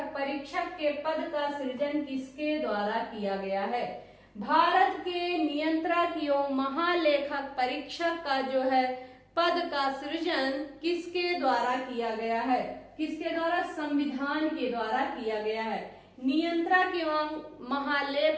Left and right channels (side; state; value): both; identical; correlation 1.00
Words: परीक्षक के पद का सृजन किसके द्वारा किया गया है? भारत के नियंत्रक एवं महालेखक परीक्षक का जो है पद का सृजन किसके द्वारा किया गया है? किसके द्वारा? संविधान के द्वारा किया गया है। नियंत्रक एवं